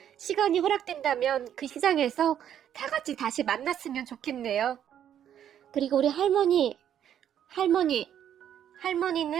시간이 허락된다면 그 시장에서 다 같이 다시 만났으면 좋겠네요. 그리고 우리 할머니는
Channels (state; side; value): quieter; left; 9.9 dB